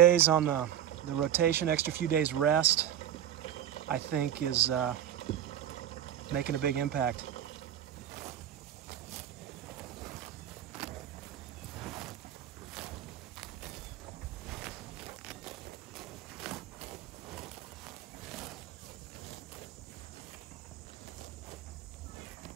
on the rotation, extra few days rest, I think is making a big impact.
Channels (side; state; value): left; quieter; 10.8 dB